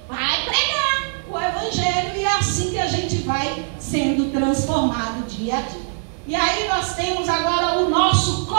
vai pregar o evangelho, e é assim que a gente vai sendo transformado dia a dia. E aí nós temos agora o nosso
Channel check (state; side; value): silent; left; 62 dB below the other